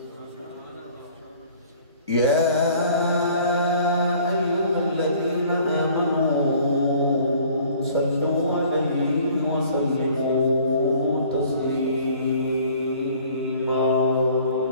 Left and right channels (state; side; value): inverted; both; correlation -0.53